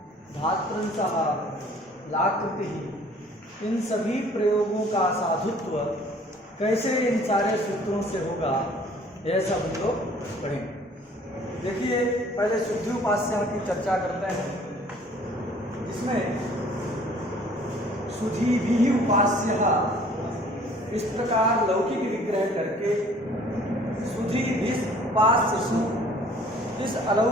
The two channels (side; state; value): both; normal; correlation 0.54